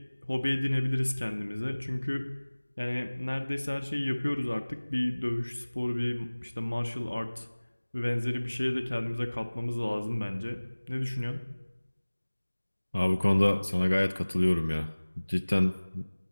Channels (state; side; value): inverted; both; correlation -1.00